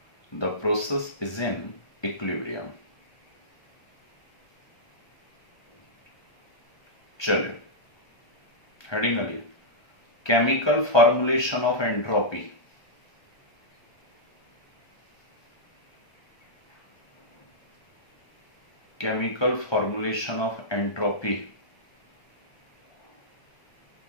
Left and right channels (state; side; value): late; right; 1.3 ms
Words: the process is in equilibrium. चलिए heading आइए, chemical formulation of entropy. Chemical formulation of entropy,